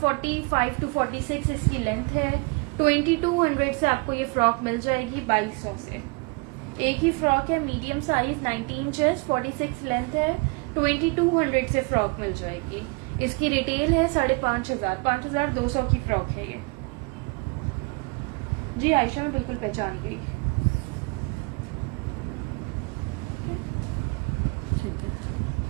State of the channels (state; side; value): quieter; left; 29.6 dB